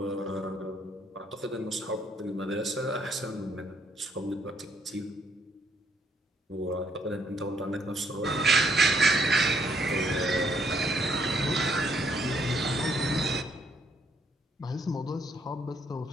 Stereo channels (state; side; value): normal; both; correlation 0.70